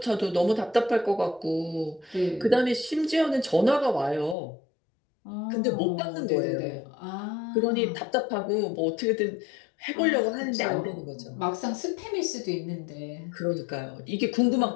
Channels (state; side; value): drops out; right; at 4.4 s